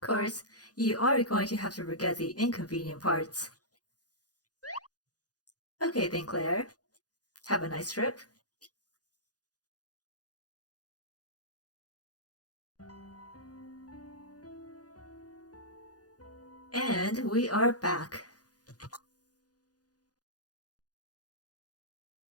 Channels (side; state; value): right; late; 0.68 ms